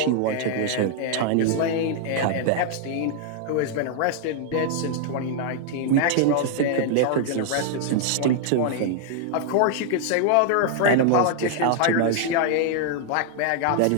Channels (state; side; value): different; both; correlation 0.00